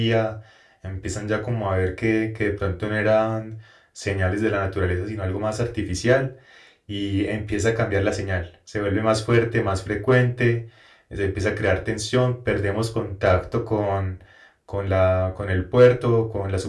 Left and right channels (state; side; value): identical; both; correlation 1.00